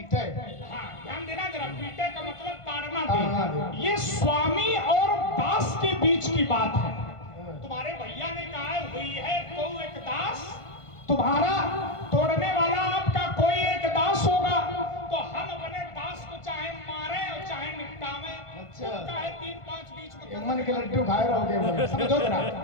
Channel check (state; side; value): late; right; 1.5 ms